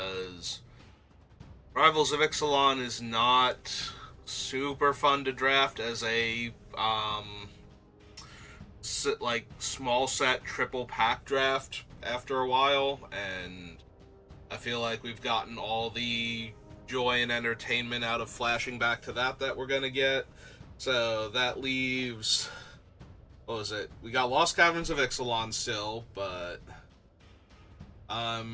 Rivals of Ixalan is not super fun to draft as a small set triple pack draft after a while, and I feel like we've gotten all the joy and entertainment out of flashing back to that we're gonna get. So that leaves, what was it? We got Lost Caverns of Ixalan still, but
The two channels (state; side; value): identical; both; correlation 1.00